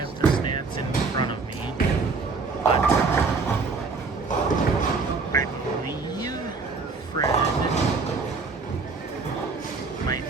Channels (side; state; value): left; quieter; 4.4 dB